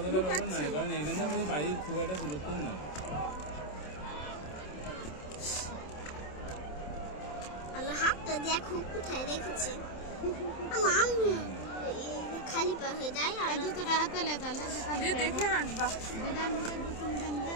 ব্যাপার নাই, কারণ এখানে আমাদের বাড়ির খুব একটা দূরত্ব না। আল্লাহ হাতটা দেখো কোথায় রেখেছে। খালি পা হয়ে যায় আর জুতোটা হাতে লে তাহলে দেখে হাঁটবা। দিদা নিজে জুতো নিজে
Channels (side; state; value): right; late; 27 ms